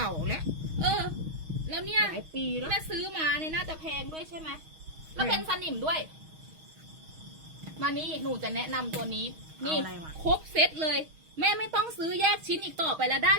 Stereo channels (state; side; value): late; left; 6.3 ms